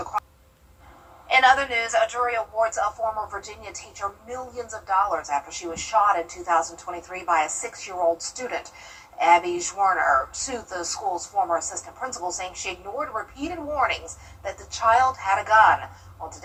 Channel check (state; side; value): identical; both; correlation 1.00